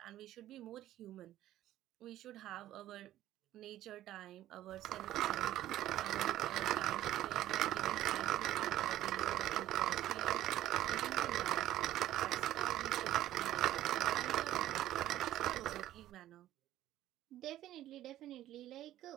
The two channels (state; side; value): quieter; left; 13.6 dB